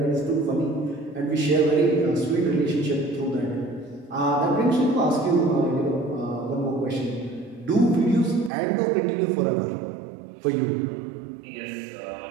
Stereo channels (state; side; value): drops out; left; at 8.5 s